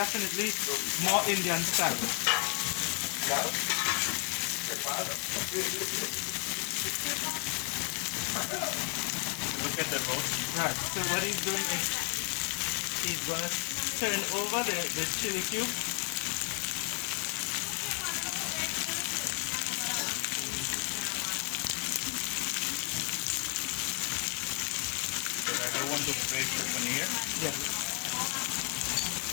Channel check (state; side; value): quieter; right; 35.1 dB